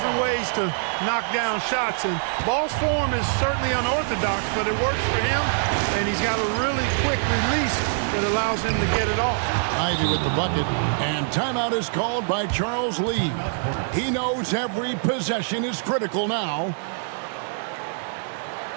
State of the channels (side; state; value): left; silent; 62 dB below the other